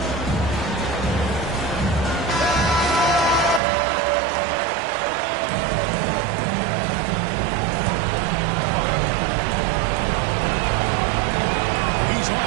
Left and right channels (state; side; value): drops out; left; at 3.6 s